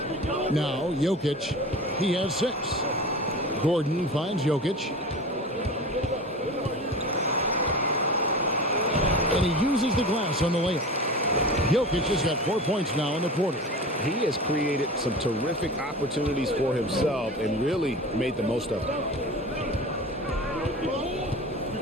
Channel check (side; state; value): both; normal; correlation 0.33